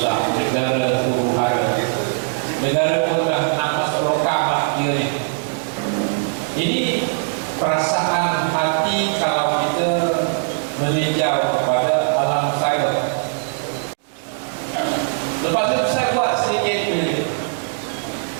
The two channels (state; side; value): silent; left; digital silence